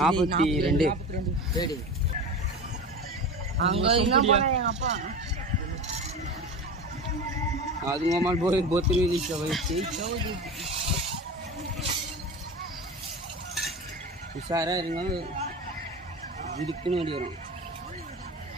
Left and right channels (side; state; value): both; normal; correlation 0.28